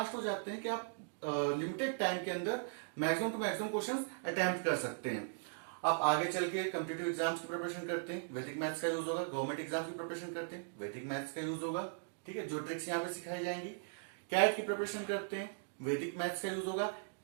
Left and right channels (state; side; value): silent; left; digital silence